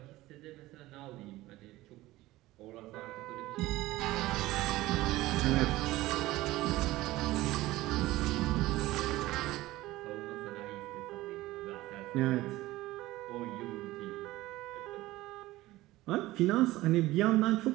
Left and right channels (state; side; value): quieter; left; 17.6 dB